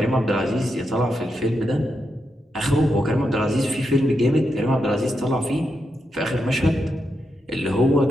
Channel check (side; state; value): both; normal; correlation 0.85